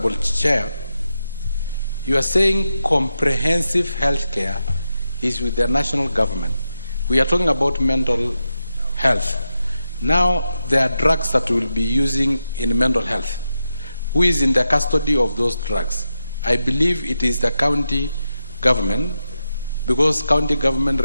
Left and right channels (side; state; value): both; inverted; correlation -0.88